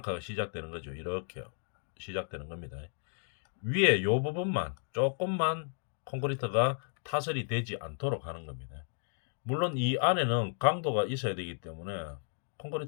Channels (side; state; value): right; silent; digital silence